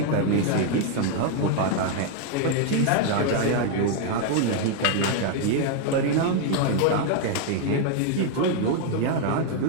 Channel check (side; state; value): both; different; correlation 0.00